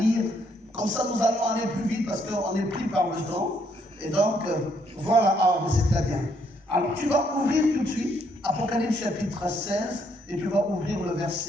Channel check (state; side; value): normal; both; correlation 0.71